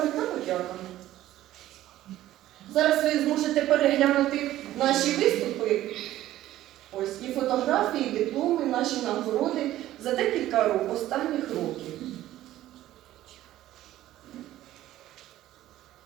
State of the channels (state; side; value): quieter; left; 14.2 dB